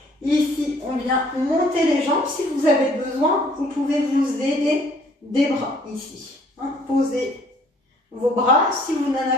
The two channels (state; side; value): normal; both; correlation 0.59